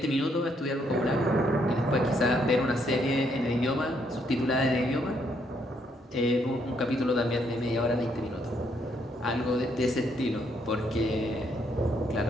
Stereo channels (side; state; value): both; normal; correlation 0.72